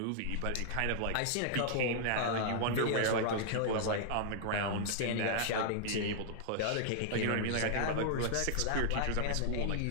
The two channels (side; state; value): both; different; correlation -0.01